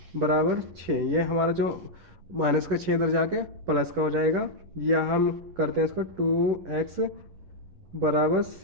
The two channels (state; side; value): late; left; 11 ms